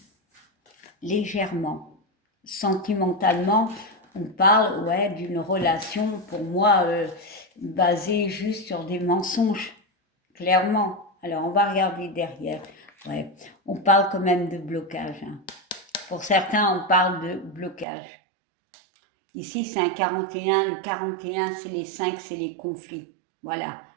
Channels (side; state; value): left; drops out; at 17.9 s